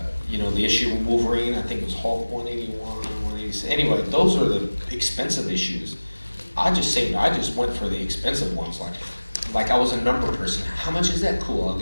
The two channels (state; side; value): inverted; both; correlation -1.00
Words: the issue of Wolverine, I think it was Hulk 181, 186. Anyway, those are the expensive issues. I just went for the expensive ones. Like I was a number person. How much is that? Cool, I'll